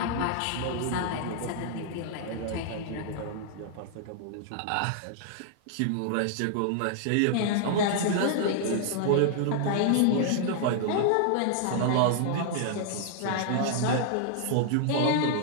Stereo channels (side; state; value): both; different; correlation -0.01